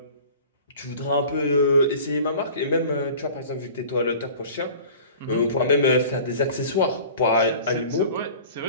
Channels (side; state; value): both; inverted; correlation -0.43